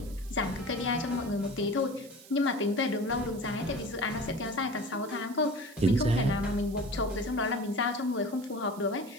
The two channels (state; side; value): noise; right; hiss, 20 dB below the sound